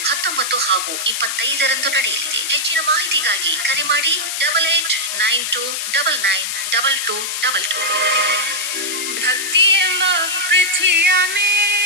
19 ಹಾಗೂ 25ರಂದು ನಡೆಯಲಿದೆ. ಹೆಚ್ಚಿನ ಮಾಹಿತಿಗಾಗಿ ಕರೆ ಮಾಡಿ 8892992222. ಭಕ್ತಿ ಎಂಬ ಪೃಥ್ವಿಯ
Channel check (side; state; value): left; noise; hiss, 3 dB below the sound